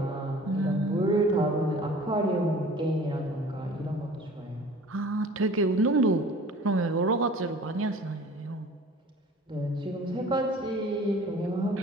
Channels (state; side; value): normal; both; correlation 0.45